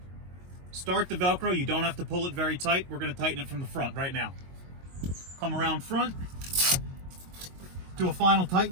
Start the Velcro. You don't have to pull it very tight. We're going to tighten it from the front right now. Come around front. Do a final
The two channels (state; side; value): late; left; 22 ms